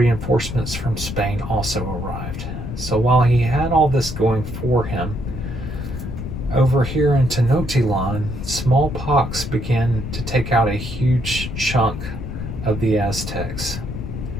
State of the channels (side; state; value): left; noise; rumble, 7 dB below the sound